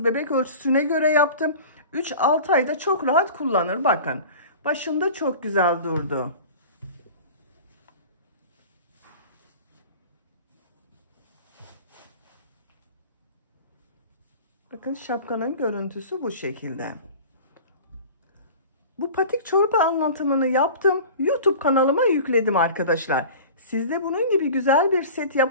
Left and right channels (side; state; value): both; inverted; correlation -0.39